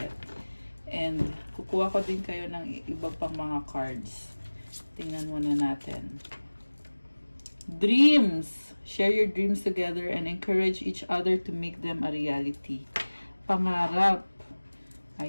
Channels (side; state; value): both; inverted; correlation -1.00